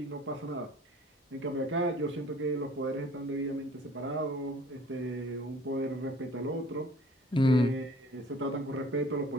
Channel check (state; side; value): normal; both; correlation 0.51